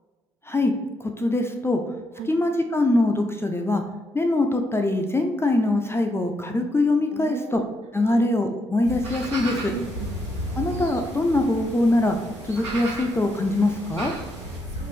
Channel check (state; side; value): normal; both; correlation 0.80